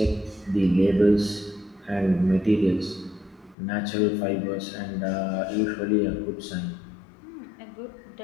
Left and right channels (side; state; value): right; drops out; at 3.6 s